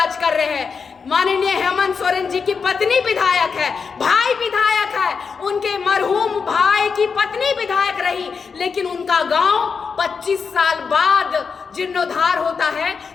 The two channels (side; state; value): right; quieter; 5.6 dB